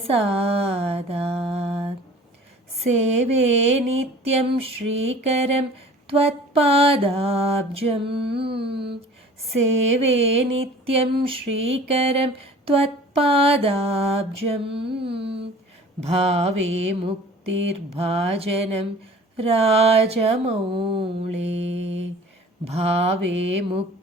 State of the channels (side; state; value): both; normal; correlation 0.45